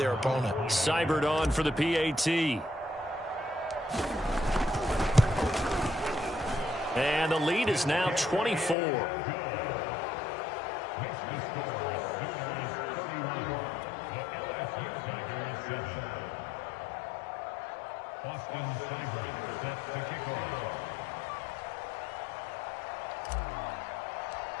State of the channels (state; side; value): drops out; right; at 8.8 s